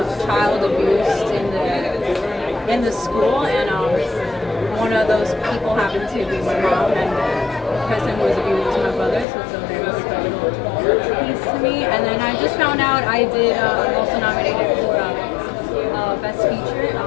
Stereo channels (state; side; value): drops out; right; at 9.2 s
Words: child abused in the school, and one of those people happened to be my mom, and the person who was abused was my brother, so it's a very special piece to me. And then I just found out I did also nominated for Best Feature